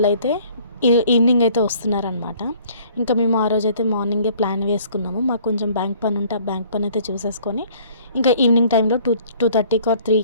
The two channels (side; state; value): both; inverted; correlation -0.56